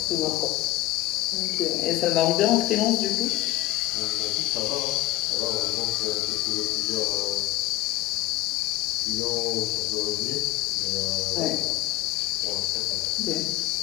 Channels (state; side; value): quieter; right; 16.5 dB